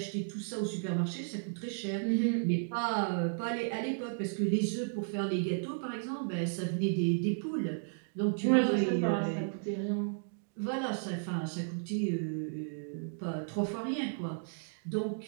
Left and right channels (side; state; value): left; silent; digital silence